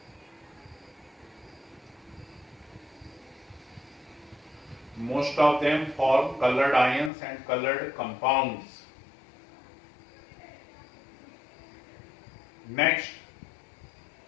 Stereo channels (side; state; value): right; drops out; at 7.1 s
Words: Most of them form colored ions and colored compounds. Next,